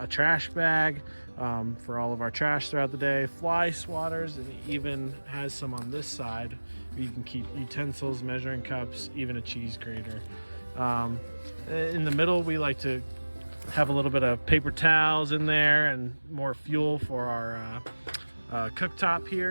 trash bag for all of our trash throughout the day, fly swatters, and it even has some on this side where you can keep utensils, measuring cups, even a cheese grater. In the middle, we like to have a little bit of paper towels in there and more fuel for our cooktop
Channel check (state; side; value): inverted; both; correlation -1.00